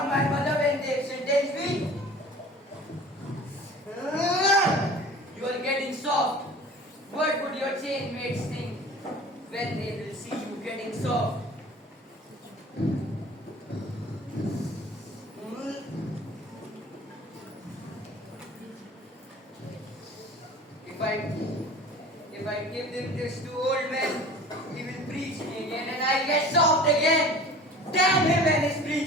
my mother when they sentenced me. You are getting soft. What would your chain mates think when they will see you getting soft? If I give them this to old man, he will preach me again and I'll get soft again. Damn him and his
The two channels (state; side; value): normal; both; correlation 0.43